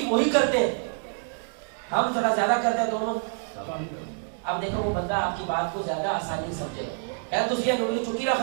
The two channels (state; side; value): silent; left; 60 dB below the other